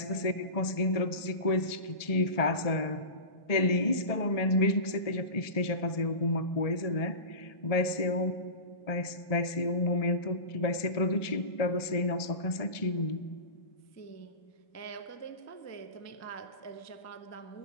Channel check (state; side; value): late; right; 1.7 ms